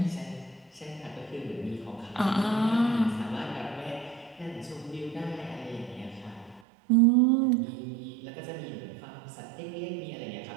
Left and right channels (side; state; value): left; drops out; at 6.6 s